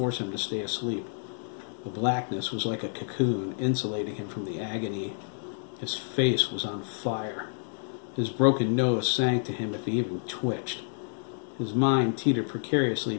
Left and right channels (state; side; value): silent; right; digital silence